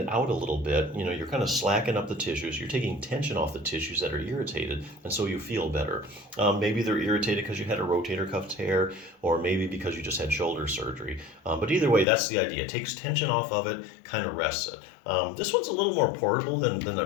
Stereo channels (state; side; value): drops out; right; at 12.1 s